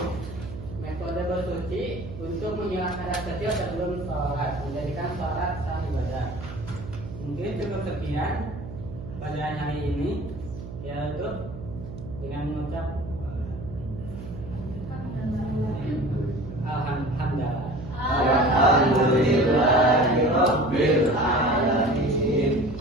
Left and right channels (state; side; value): noise; right; hum, 11 dB below the sound